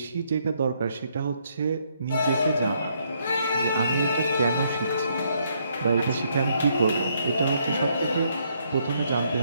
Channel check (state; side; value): inverted; both; correlation -0.72